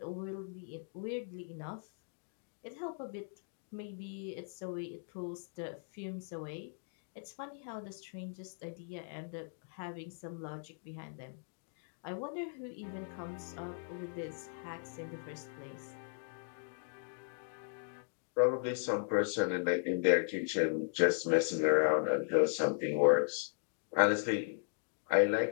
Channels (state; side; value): silent; right; digital silence